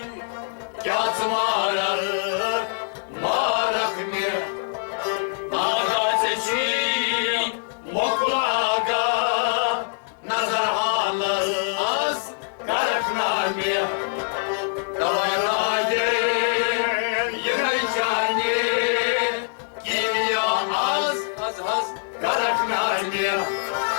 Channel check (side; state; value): right; silent; digital silence